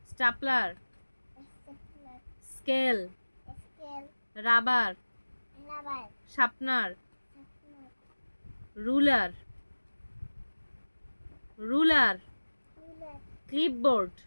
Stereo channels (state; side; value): inverted; both; correlation -1.00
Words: stapler, stapler, scale, scale, rubber, rubber, sharpener, sharpener, ruler, ruler, ruler, clipboard,